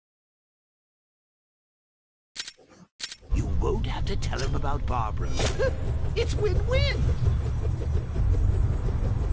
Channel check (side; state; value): both; identical; correlation 1.00